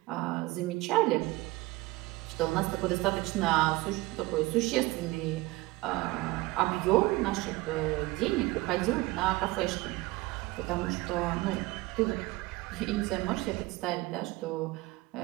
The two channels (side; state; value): left; quieter; 20.7 dB